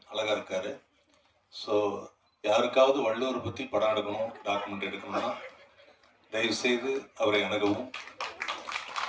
அழகாக இருக்கார். ஸோ யாருக்காவது வள்ளுவரை பற்றி படம் எடுக்கணும், டாக்குமெண்ட் எடுக்கணும்னா தயவுசெய்து அவரை அணுகவும்.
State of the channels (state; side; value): identical; both; correlation 1.00